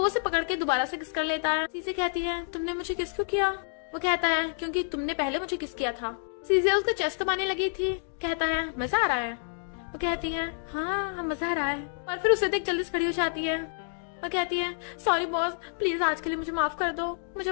उसे पकड़ के दोबारा से किस कर लेता है। सीजिया कहती है तुमने मुझे किस क्यों किया। वो कहता है क्योंकि तुमने पहले मुझे किस किया था। सीजिया उसका चेस्ट दबाने लगी थी। कहता है मजा आ रहा है। वो कहती है हाँ मजा आ रहा है, और फिर उसे देख जल्दी से खड़ी हो जाती है। वो कहती है सॉरी बॉस प्लीज आज के लिए मुझे माफ कर दो, मुझे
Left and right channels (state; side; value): silent; right; digital silence